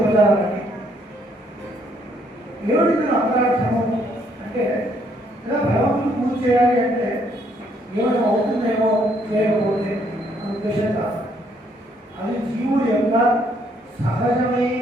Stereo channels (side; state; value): both; normal; correlation 0.69